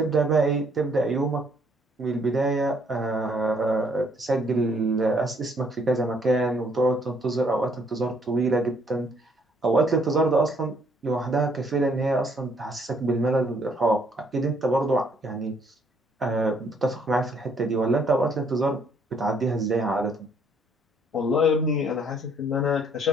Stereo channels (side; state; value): both; normal; correlation 0.66